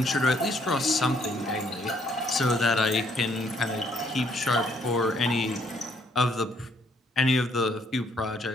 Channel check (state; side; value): normal; both; correlation 0.68